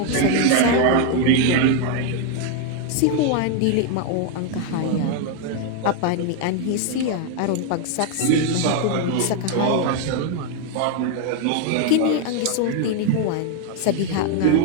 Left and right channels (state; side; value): different; both; correlation 0.01